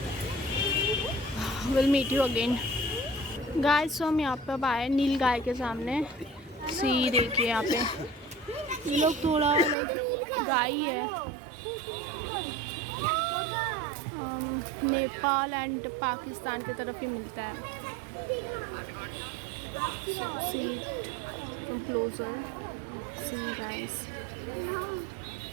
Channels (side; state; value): left; drops out; at 9.8 s